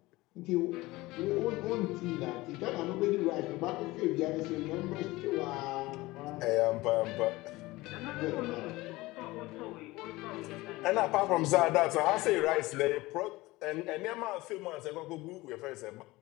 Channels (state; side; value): quieter; right; 20.0 dB